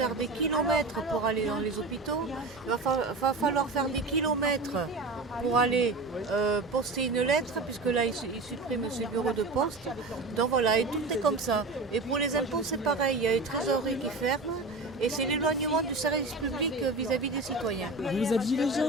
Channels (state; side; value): quieter; left; 3.2 dB